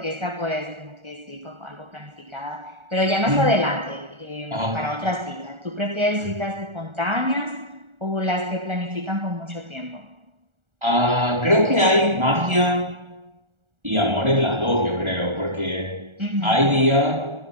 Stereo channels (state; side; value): late; left; 1.4 ms